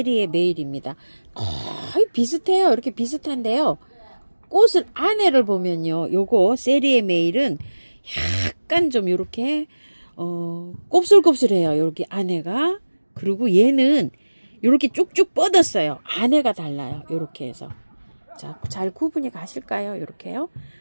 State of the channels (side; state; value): both; inverted; correlation -1.00